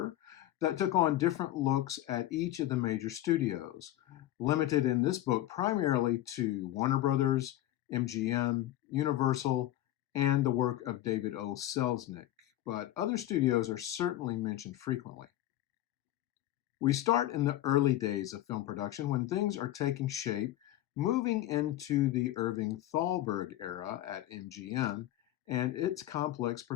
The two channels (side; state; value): right; quieter; 14.1 dB